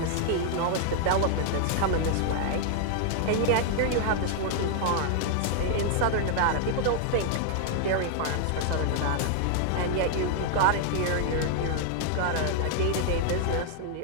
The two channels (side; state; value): both; different; correlation 0.00